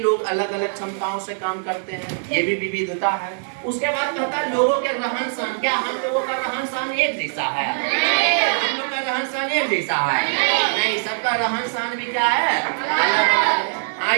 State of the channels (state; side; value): silent; left; digital silence